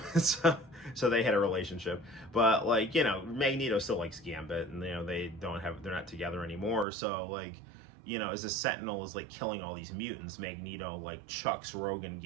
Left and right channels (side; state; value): left; drops out; at 6.9 s